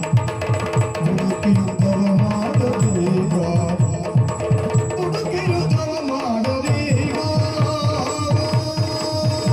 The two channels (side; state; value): both; identical; correlation 1.00